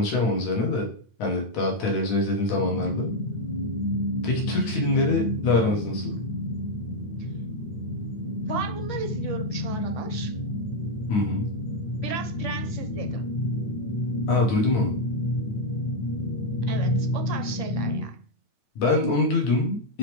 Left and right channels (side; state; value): right; late; 9.1 ms